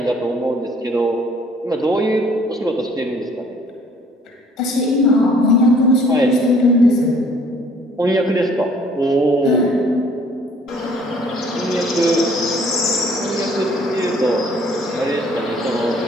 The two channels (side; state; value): both; normal; correlation 0.58